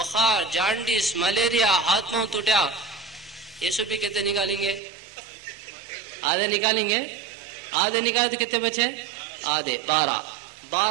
جانڈیس ملیریا ہاتھ پاؤں ٹوٹیا یہ سب بھی کتنے نکالیں گے آدھے نکالیں گے آدھے نکالے تو کتنے بچے آدھے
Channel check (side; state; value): left; drops out; at 4.8 s